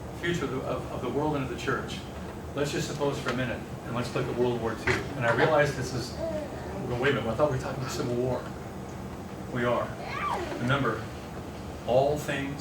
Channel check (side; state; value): both; identical; correlation 1.00